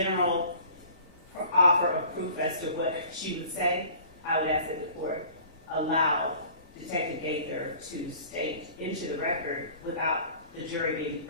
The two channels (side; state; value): both; inverted; correlation -0.47